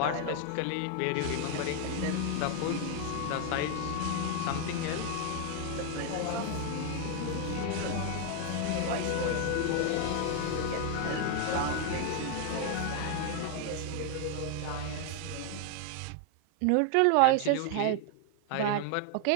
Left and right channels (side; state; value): both; different; correlation 0.00